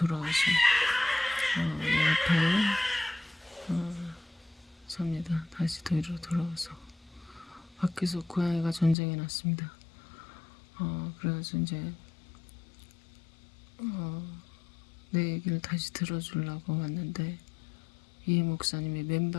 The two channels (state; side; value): drops out; right; at 9.0 s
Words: 내 앞에 섭니다. 다시 뒤로 돌아와서 밖에서 고양이가 전쟁이 났습니다. 그래가지고 이제 내 얘기를 다시 들어주려고 왔는데 이 목사님이